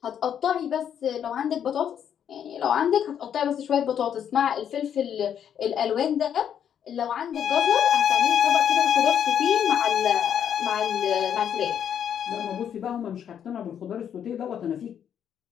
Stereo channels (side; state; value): right; quieter; 8.9 dB